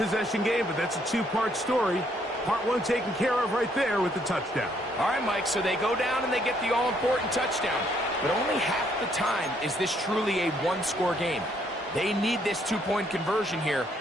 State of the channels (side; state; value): both; normal; correlation 0.69